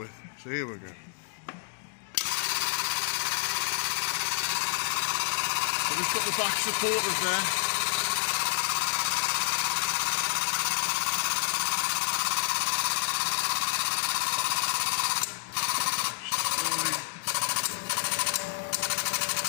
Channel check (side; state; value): right; silent; digital silence